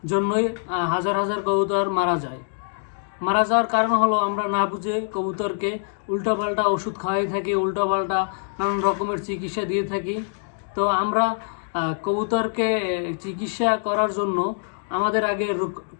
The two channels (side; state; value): right; silent; digital silence